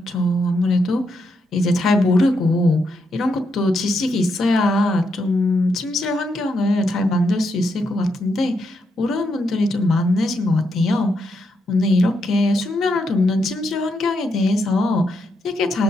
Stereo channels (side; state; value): both; normal; correlation 0.80